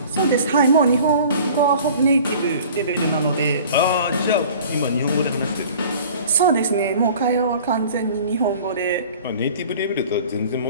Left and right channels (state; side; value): inverted; both; correlation -0.46